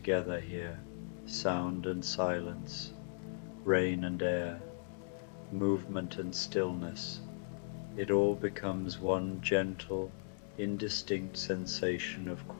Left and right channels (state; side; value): silent; right; digital silence